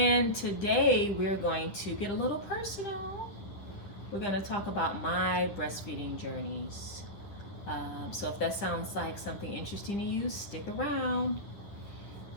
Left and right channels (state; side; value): late; right; 10 ms